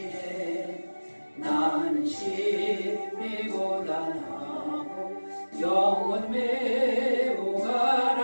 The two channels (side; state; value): both; inverted; correlation -1.00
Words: 나는 심히 고단하고 영혼 매우